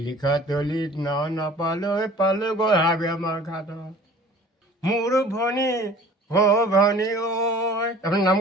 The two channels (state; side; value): normal; both; correlation 0.47